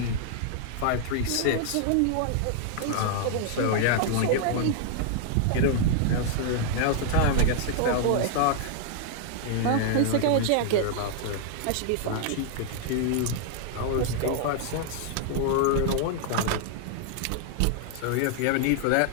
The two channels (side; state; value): both; different; correlation -0.01